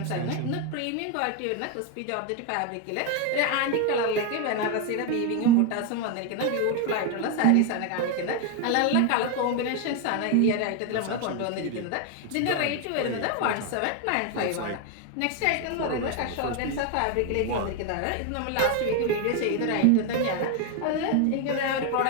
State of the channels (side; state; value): both; different; correlation 0.01